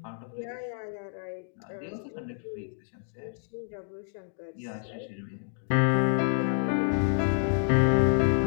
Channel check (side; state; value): right; silent; digital silence